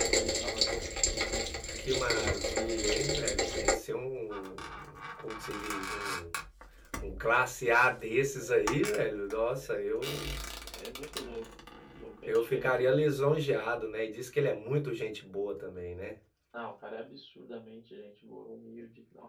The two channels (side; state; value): both; identical; correlation 1.00